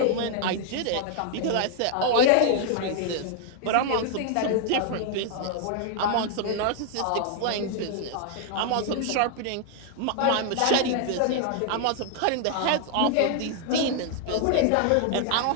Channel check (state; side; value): different; both; correlation 0.00